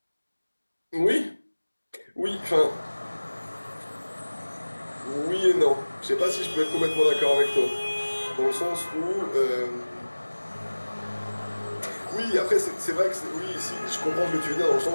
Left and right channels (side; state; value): both; inverted; correlation -1.00